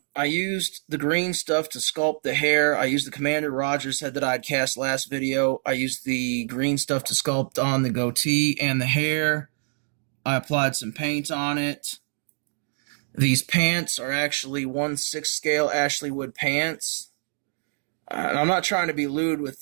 used the green stuff to sculpt the hair. I used the Commander Rogers head that I'd cast last video. I used the green stuff to sculpt on the goatee and the hair. I applied some paint on it. These pants are actually 1/6 scale Ashley Wood pants. I'm not trying to be lewd with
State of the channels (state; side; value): silent; left; 57 dB below the other